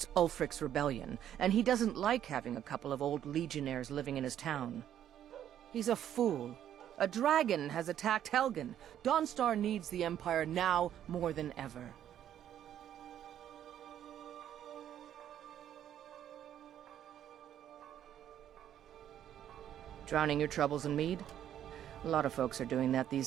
Ulfric's rebellion, and he doesn't like having a couple of old legionnaires living in his town. He's a fool. A dragon has attacked Helgen. Dawnstar needs the Empire now more than ever. Drowning your troubles in mead? A lot of folks are doing that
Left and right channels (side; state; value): left; quieter; 10.6 dB